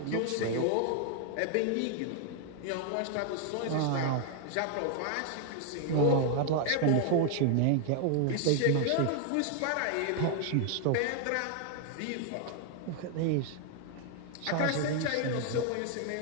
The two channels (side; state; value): both; different; correlation 0.00